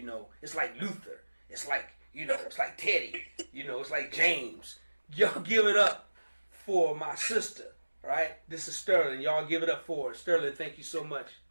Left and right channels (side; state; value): both; inverted; correlation -1.00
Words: like Luther. It's like it's like Teddy. It's like James. Y'all give it up for my sister. Right? This is Sterlyn. Y'all give it up for her. Sterlyn, thank you so much.